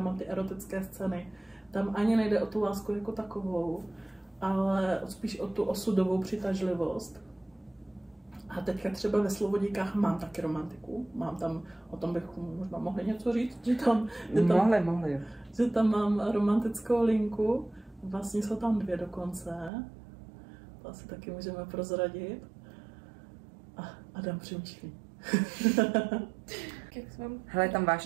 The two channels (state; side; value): drops out; left; at 19.7 s